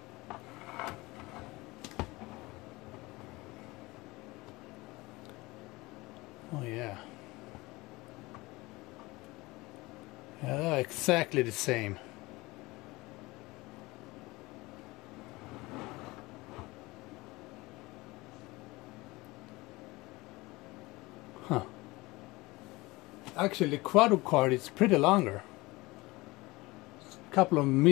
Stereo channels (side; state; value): right; quieter; 21.7 dB